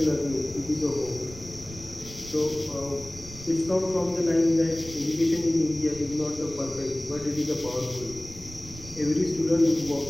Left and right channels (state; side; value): noise; right; rumble, 15 dB below the sound